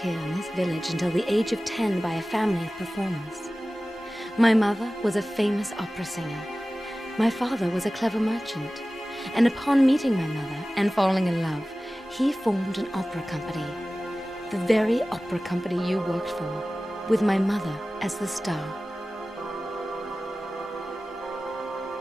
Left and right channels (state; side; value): normal; both; correlation 0.96